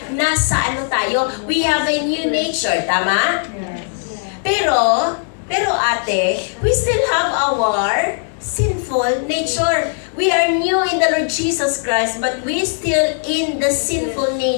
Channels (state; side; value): silent; right; digital silence